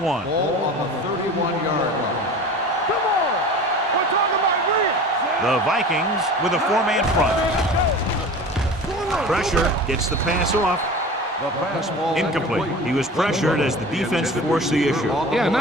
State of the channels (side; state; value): both; normal; correlation 0.37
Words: Ball on the 31-yard line. Come on! We're talking about real! The Vikings with a four-man front. Pressure gets the pass off. The pass ball Incomplete. He was pressured as the defense forced the issue. Yeah, and